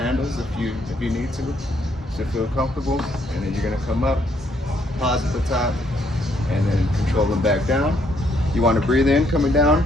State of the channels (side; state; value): both; normal; correlation 0.71